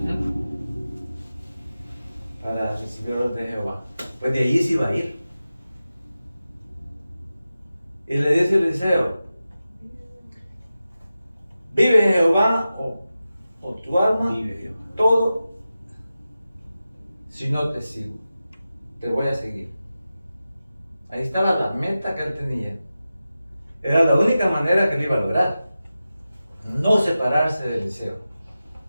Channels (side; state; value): both; inverted; correlation -0.93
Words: para recibir orden de Jehová. Pues de allí se iba a ir. Y le dice Eliseo, vive Jehová o tu alma, Vive Jehová. todo, si no te sigo, te voy a seguir. Ahí estaba la meta que él tenía. Era la única manera que él iba a lograr. No separarse de Eliseo.